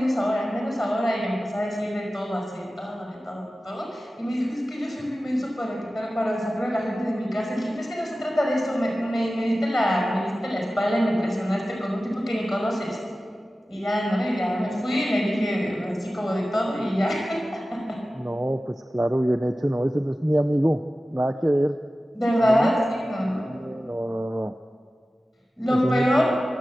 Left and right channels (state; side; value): normal; both; correlation 0.95